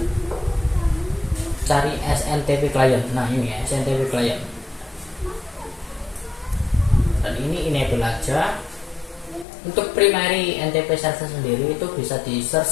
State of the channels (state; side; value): drops out; right; at 9.5 s